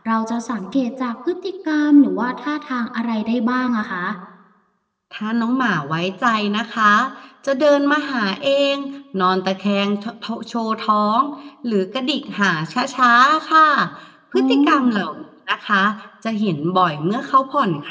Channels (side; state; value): both; identical; correlation 1.00